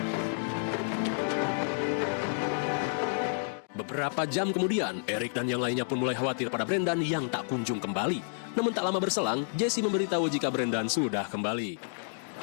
Beberapa jam kemudian, Eric dan yang lainnya pun mulai khawatir pada Brendan yang tak kunjung kembali. Namun tak lama berselang, Jesse memberitahu jika Brendan sudah kembali.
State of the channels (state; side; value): silent; right; digital silence